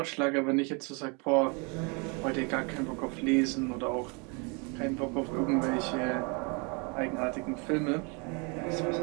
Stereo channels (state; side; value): quieter; left; 32.2 dB